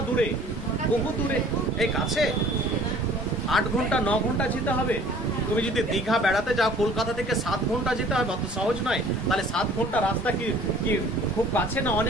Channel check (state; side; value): normal; both; correlation 0.51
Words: দূরে? বহু দূরে। এই কাছে 8 ঘন্টা 9 ঘন্টা যেতে হবে। তুমি যদি দীঘা বেড়াতে যাও কলকাতা থেকে 7 ঘন্টা যেতে হবে, অত সহজ নয়। তাহলে 7 ঘন্টা রাস্তা কি খুব কাছে না